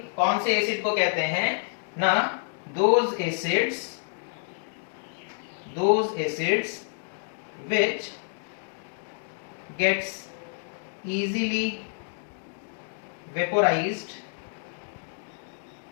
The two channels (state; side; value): silent; right; digital silence